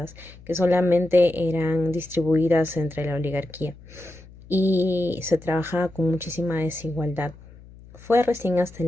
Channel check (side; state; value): left; noise; hum, 21 dB below the sound